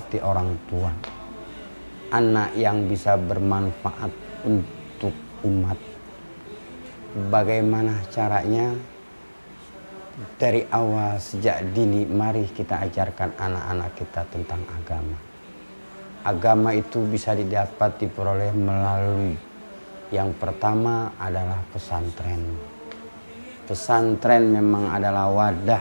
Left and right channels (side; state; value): both; inverted; correlation -1.00